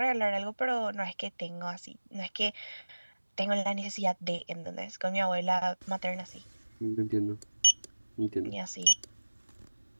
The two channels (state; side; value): inverted; both; correlation -1.00